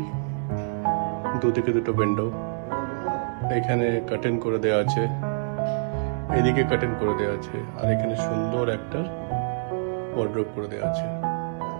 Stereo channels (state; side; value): silent; left; digital silence